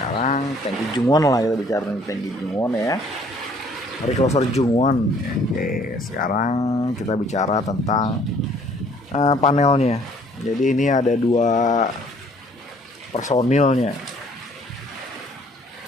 tangki Jungwon lah, kita bicara tentang tangki Jungwon ya. Recloser Jungwon. Oke, sekarang kita bicara tentang panelnya. Jadi ini ada dua personilnya.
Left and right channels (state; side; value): normal; both; correlation 0.59